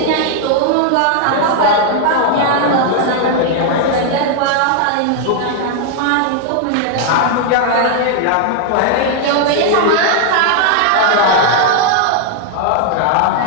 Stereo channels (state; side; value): different; both; correlation 0.00